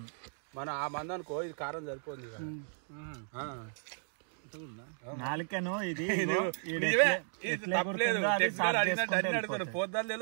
మనం ఆ మంది అనుకో, ఇది కారం సరిపోతుంది. నాలుకను ఇది పోద్దాలు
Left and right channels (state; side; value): silent; left; 55 dB below the other